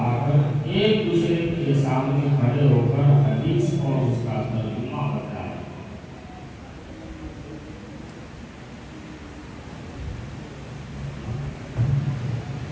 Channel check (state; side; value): identical; both; correlation 1.00